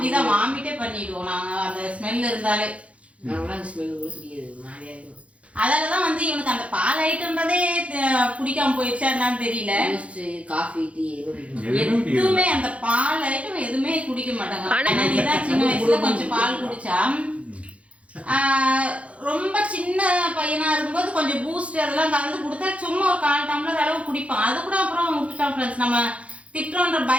வாமிட்டே பண்ணிடுவோம் நாங்க அந்த ஸ்மெல் இருந்தாலே. அதனாலதான் வந்து இவனுக்கு அந்த பால் ஐட்டம்ன்றதே பிடிக்காம போயிடுச்சா என்னன்னு தெரியல. காஃபி டீ எதுவுமே அந்த பால் ஐட்டம் எதுவுமே குடிக்க மாட்டாங்க. நீதான் சின்ன வயசுல கொஞ்சம் பால் குடிச்சா, ரொம்ப சின்ன பையனா இருக்கும்போது கொஞ்சம் பூஸ்ட் அதெல்லாம் கலந்து கொடுத்தா சும்மா ஒரு 1/4 டம்ளர் அளவு குடிப்பான். அது கூட அப்புறம் விட்டுட்டான் ஃப்ரெண்ட்ஸ். நம்ம திட்டுறோன்ற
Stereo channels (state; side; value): late; left; 0.063 ms